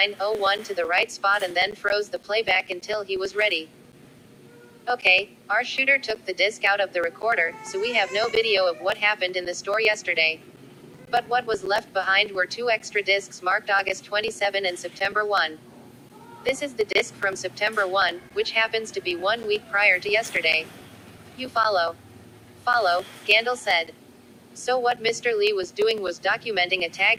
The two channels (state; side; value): identical; both; correlation 1.00